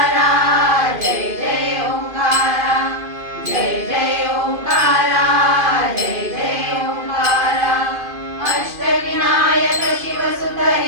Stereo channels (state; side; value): late; left; 2.5 ms